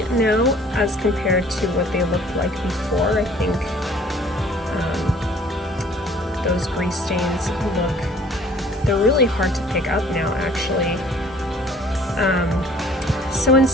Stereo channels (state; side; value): normal; both; correlation 0.54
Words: now as compared to what they looked like before. I think those grease stains they're really hard to pick up now actually. So in